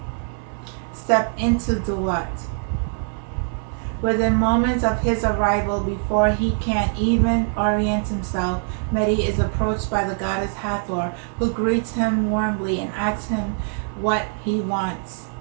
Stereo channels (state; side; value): silent; left; 55 dB below the other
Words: step into DUAT. Within moments of his arrival, before he can even orient himself, MERYRE is approached by the goddess Hathor, who greets him warmly and asks him what he wants.